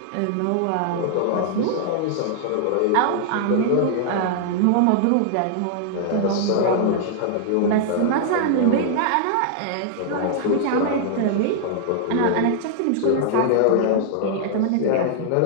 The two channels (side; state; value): both; different; correlation -0.01